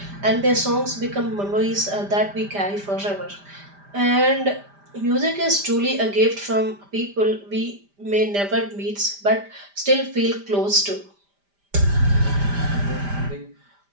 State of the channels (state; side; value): late; left; 5.0 ms